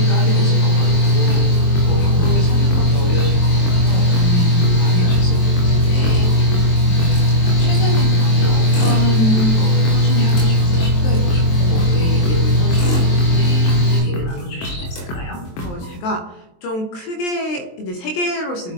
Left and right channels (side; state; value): right; late; 23 ms